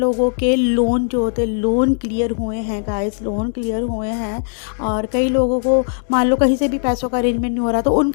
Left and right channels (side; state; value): right; silent; digital silence